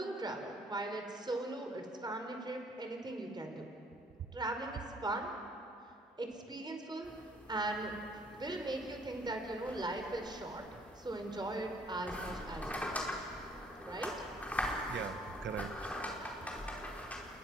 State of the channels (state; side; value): normal; both; correlation 0.61